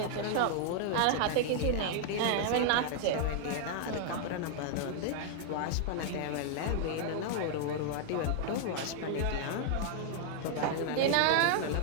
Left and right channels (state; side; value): different; both; correlation 0.00